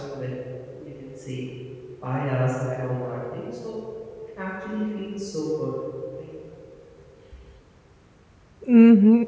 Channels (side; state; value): both; identical; correlation 1.00